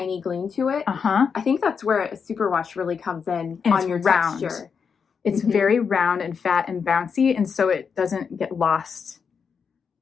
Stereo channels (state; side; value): quieter; right; 6.2 dB